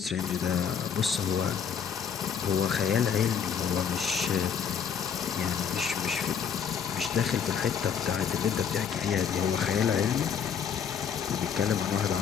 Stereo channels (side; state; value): right; quieter; 7.5 dB